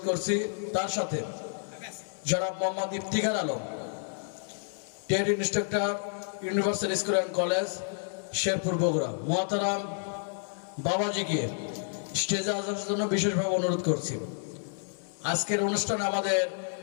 করছি। তার সাথে জনাব Mohammad Iftikhar Alam, TET instructor, universal school and college, Sherpur, Bogura. মোহতারাম বাবাজিকে স্টেজে আসার জন্য বিশেষভাবে অনুরোধ করছি। আজকের অনুষ্ঠানে আমাদের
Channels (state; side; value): silent; right; 58 dB below the other